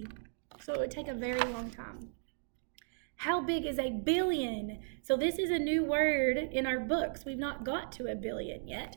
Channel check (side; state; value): left; silent; digital silence